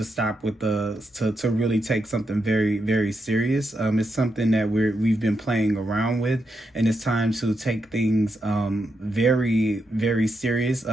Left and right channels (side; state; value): both; normal; correlation 0.83